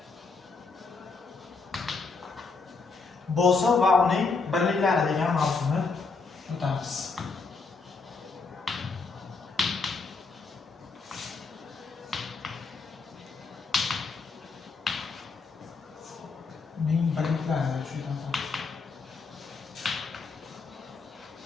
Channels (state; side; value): quieter; right; 4.4 dB